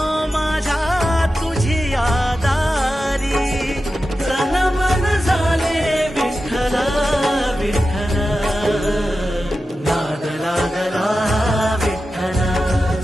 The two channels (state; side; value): normal; both; correlation 0.92